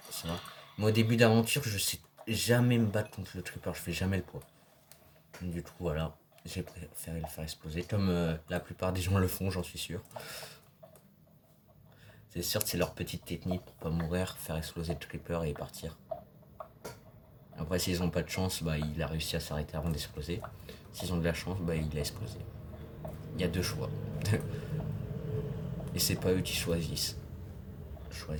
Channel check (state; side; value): identical; both; correlation 1.00